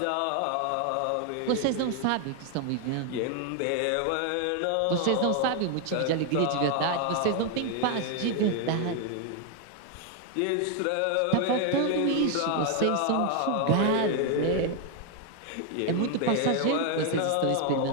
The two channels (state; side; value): different; both; correlation 0.00